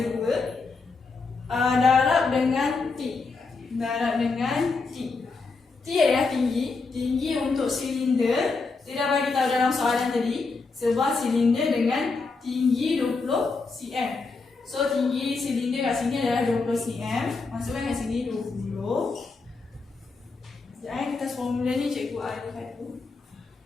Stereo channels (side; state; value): right; quieter; 4.2 dB